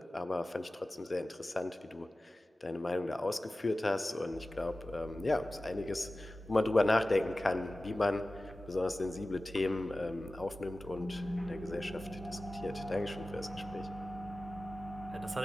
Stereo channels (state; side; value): normal; both; correlation 0.96